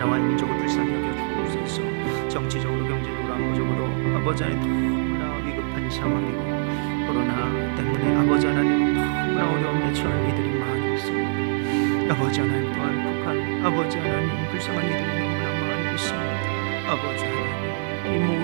민족을 불쌍히 여겨 주옵소서. 정치적으로, 경제적으로, 안보적으로 아버지 하나님 너무나 위급한 상황이고, 코로나 때문에 아버지 하나님 너무나 어려움에 처한 이들이 많이 있습니다. 아버지 하나님, 또한 북한 아버지 하나님 불쌍한 이들이 너무나 많이 있습니다. 아버지 하나님, 이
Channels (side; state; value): left; silent; 62 dB below the other